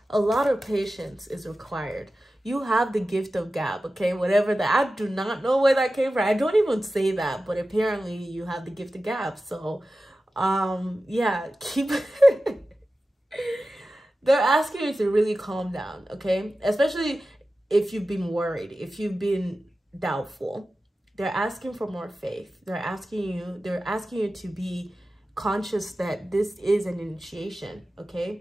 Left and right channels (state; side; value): normal; both; correlation 0.94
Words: A lot of patience is required. You have the gift of gab, okay? Whatever that, I do not know where that came from. I don't even say that, but apparently you have the gift of gab. So, yeah, keep... They're asking you to really calm down, okay? Especially if you've been worried, if you've been doubtful. They're asking for more faith. They're asking you to be conscious that this is an initiation,